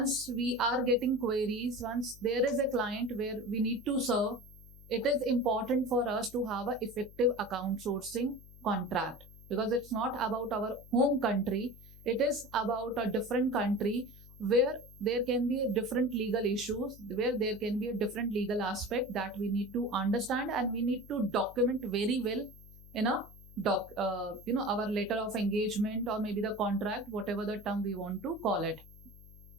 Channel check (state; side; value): noise; left; hum, 20 dB below the sound